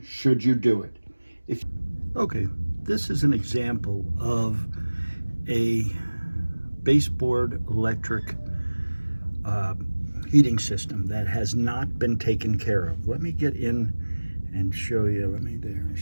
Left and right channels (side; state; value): both; inverted; correlation -1.00